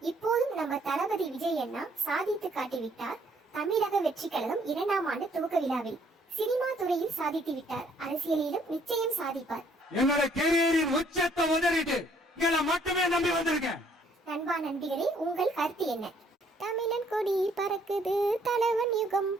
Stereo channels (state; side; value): normal; both; correlation 0.64